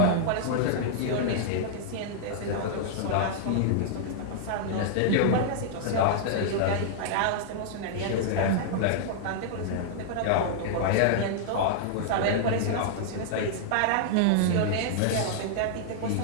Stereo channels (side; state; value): both; different; correlation -0.01